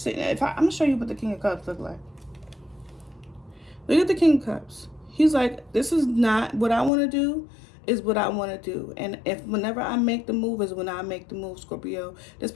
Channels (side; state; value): right; drops out; at 6.9 s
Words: I'm going to show you what the King of Cups look like. Look at the King of Cups. He's like, this is not what I want to do. Is what I want to do. And whenever I make the move is when I make the move, Scorpio. This